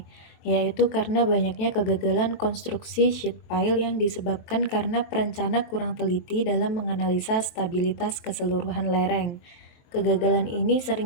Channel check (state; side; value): late; right; 23 ms